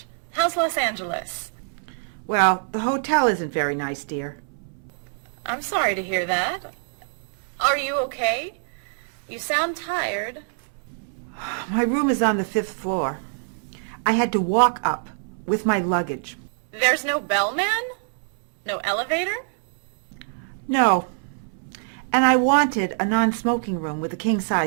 How's Los Angeles? Well, the hotel isn't very nice, dear. I'm sorry to hear that. Are you okay? You sound tired. My room is on the 5th floor. I had to walk up with my luggage. There's no bellman? No elevator? No. And I wanted a non-smoking room with a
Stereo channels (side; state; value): left; silent; 59 dB below the other